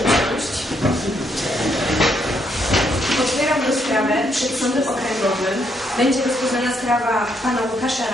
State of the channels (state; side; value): normal; both; correlation 0.74